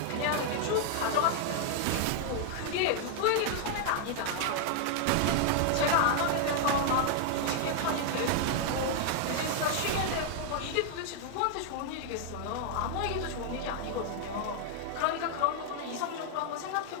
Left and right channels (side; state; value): both; different; correlation 0.00